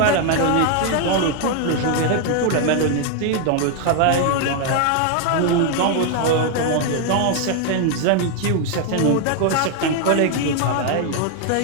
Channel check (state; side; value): different; both; correlation 0.00